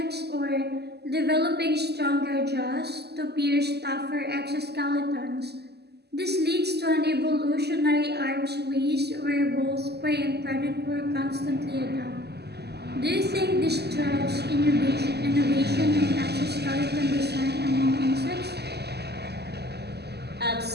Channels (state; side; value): late; left; 0.48 ms